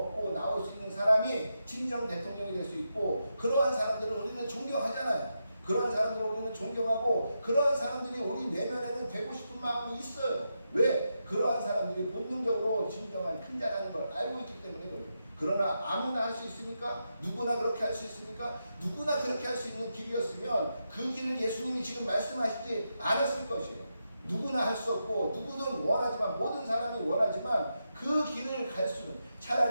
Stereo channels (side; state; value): both; inverted; correlation -0.86